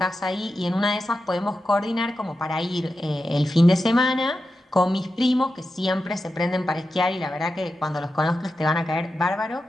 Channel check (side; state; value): both; normal; correlation 0.91